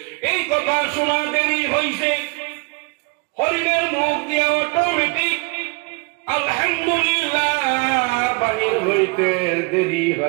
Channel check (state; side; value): quieter; left; 29.0 dB